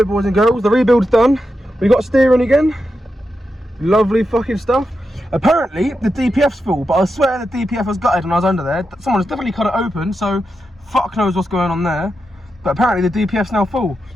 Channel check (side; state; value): both; normal; correlation 0.87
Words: boys and girls, the rebuild's done. We got steering again. Lovely fucking stuff. Apparently, the DPF's full, but I swear the DPF was gutted when I was under there. Someone's definitely cut it open, so fuck knows what's going on there. But apparently the DPF's now full.